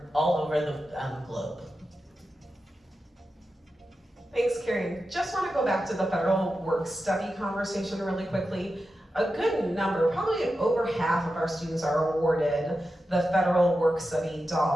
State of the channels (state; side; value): normal; both; correlation 0.91